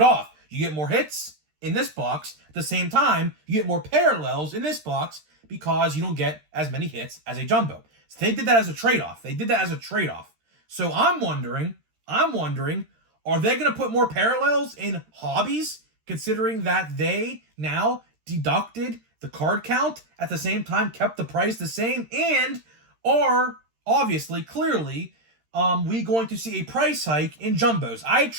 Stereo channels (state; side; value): late; left; 13 ms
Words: off. You get more hits in this box. At the same time, you get more parallels in this box because you don't get as many hits as a jumbo. So they did that as a trade-off. So I'm wondering, are they going to put more parallels in hobbies considering that they now deducted the card count, at the same time kept the price the same, and are obviously, clearly, we going to see a price hike in jumbos? I